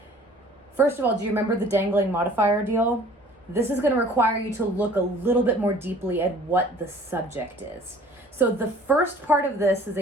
First of all, do you remember the dangling modifier deal? This is going to require you to look a little bit more deeply at what the subject is. So the first part of this is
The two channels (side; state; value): both; normal; correlation 0.51